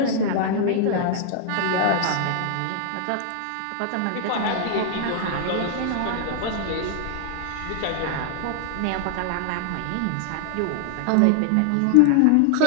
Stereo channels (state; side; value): different; both; correlation 0.00